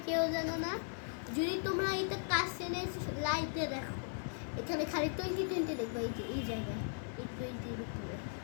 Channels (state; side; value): silent; right; digital silence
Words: কেউ জানো না, যদি তোমরা এটা কাছে এনে লাইটে দেখো, এখানে খালি 2020 দেখবে। এই যে এই জায়গায় এই 20 উপরে।